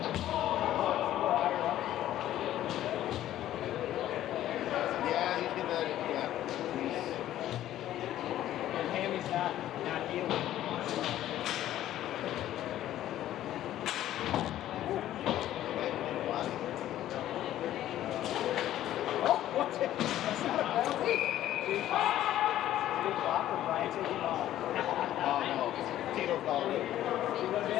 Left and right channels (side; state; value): right; quieter; 12.9 dB